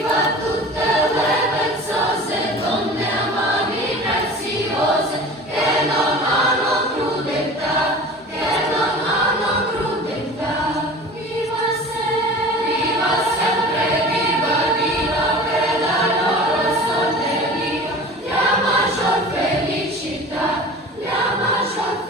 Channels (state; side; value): normal; both; correlation 0.39